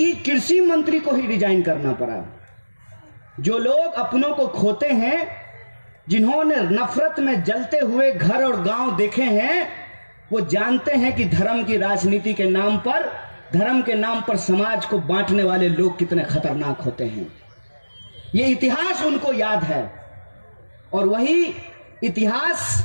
कृषि मंत्री को ही रिजाइन करना पड़ा। जो लोग अपनों को खोते हैं, जिन्होंने नफरत में जलते हुए घर और गांव देखे हैं, वो जानते हैं कि धर्म की राजनीति के नाम पर, धर्म के नाम पर समाज को बांटने वाले लोग कितने खतरनाक होते हैं। ये इतिहास उनको याद है और वही इतिहास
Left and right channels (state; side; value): inverted; both; correlation -1.00